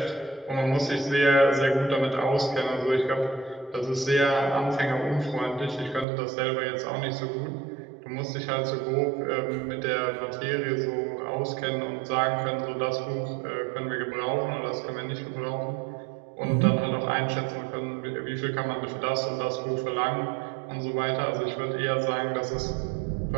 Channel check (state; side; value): drops out; left; at 6.1 s